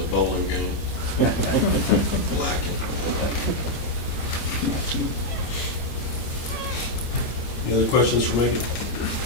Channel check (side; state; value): right; late; 25 ms